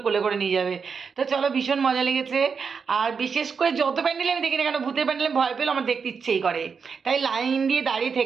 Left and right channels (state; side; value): quieter; left; 5.8 dB